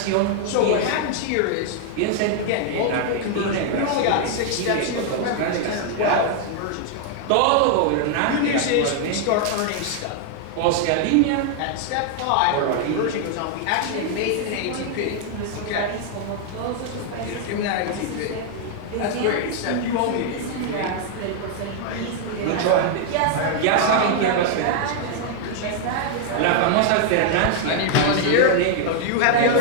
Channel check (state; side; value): different; both; correlation 0.00